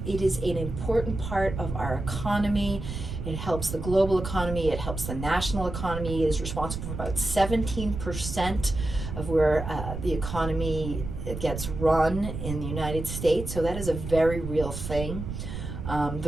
it is an important part of our economy. It helps the global economy, it helps the national economy. It is responsible for about 17% of where the economy gets run in the United States, so that is a very real thing.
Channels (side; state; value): right; noise; rumble, 6 dB below the sound